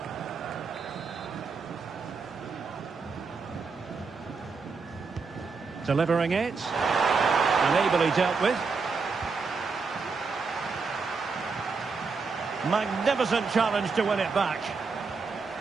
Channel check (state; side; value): quieter; left; 4.8 dB